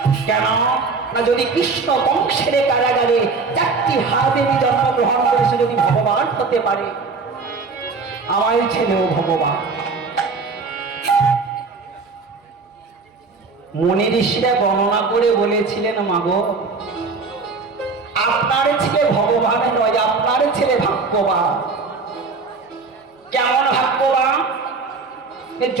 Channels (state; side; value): quieter; left; 4.4 dB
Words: কেন না, যদি কৃষ্ণ বংশের কারাগারে 4টি হাত নিয়ে জন্মগ্রহণ করেছে, যদি ভগবান হতে পারে, আমার ছেলেও ভগবান। মুনি ঋষিরা গণনা করে বলেছিলেন, মাগো আপনার ছেলে ভগবান নয়, আপনার ছেলে ভাগ্যবান। কেমন ভাগ্যবান?